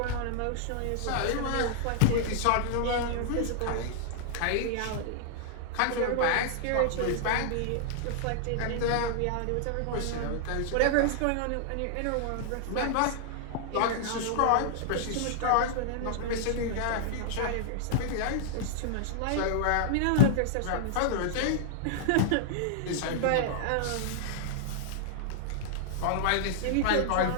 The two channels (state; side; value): different; both; correlation -0.01